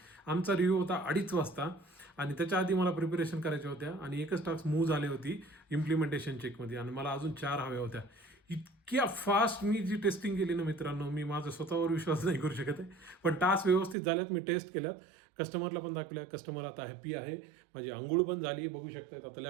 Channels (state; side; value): drops out; left; at 14.0 s